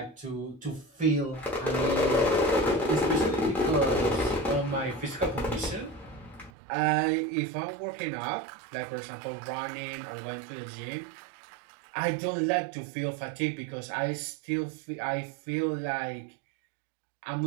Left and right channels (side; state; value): left; drops out; at 6.5 s